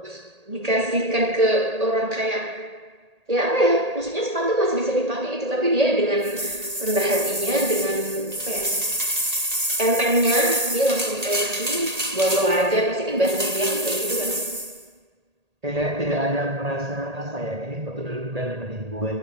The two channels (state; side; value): late; left; 1.8 ms